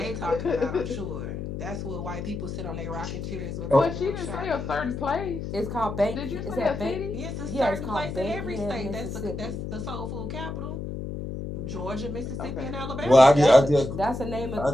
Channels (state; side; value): noise; left; hum, 6 dB below the sound